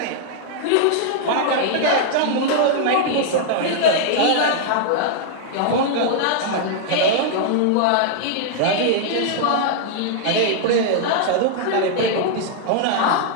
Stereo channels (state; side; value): different; both; correlation -0.01